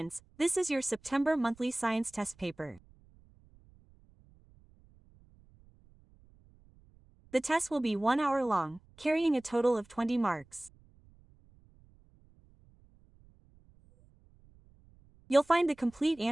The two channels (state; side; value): noise; right; rumble, 28 dB below the sound